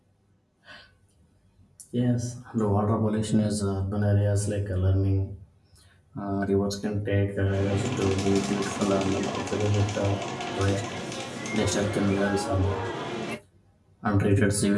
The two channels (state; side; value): identical; both; correlation 1.00